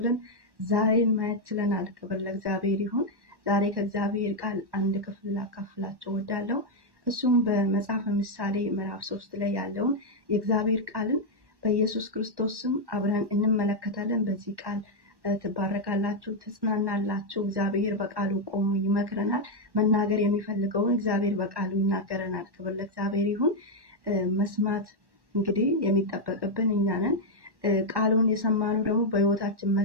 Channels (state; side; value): late; left; 1.1 ms